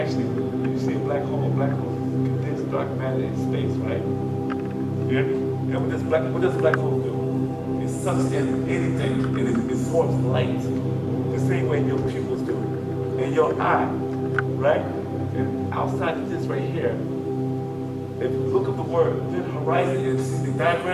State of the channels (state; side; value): identical; both; correlation 1.00